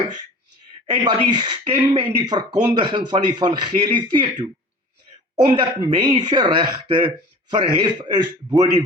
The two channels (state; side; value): normal; both; correlation 0.42